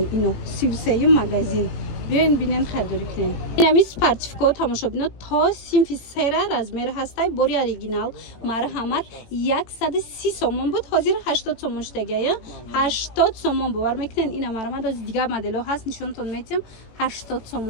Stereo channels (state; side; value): late; right; 18 ms